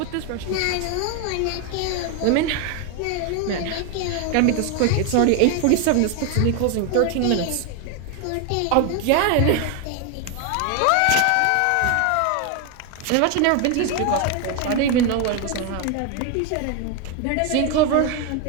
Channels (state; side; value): different; both; correlation 0.01